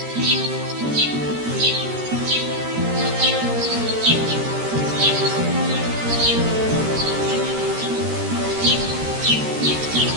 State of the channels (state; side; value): late; left; 13 ms